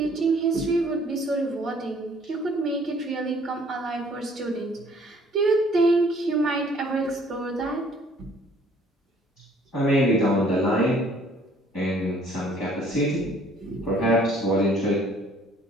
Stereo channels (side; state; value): both; normal; correlation 0.58